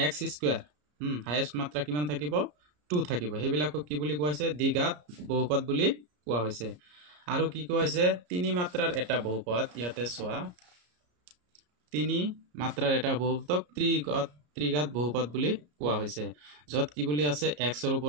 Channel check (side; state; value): left; late; 34 ms